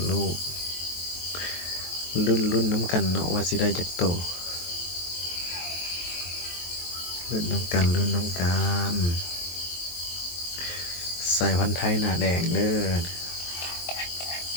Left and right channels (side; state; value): right; late; 23 ms